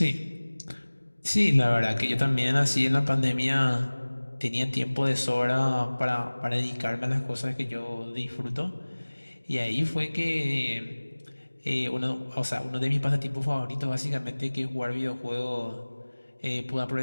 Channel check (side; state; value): both; inverted; correlation -1.00